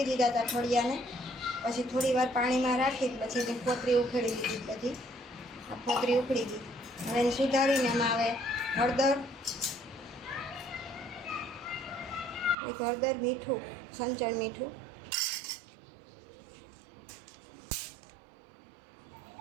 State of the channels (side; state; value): left; drops out; at 12.6 s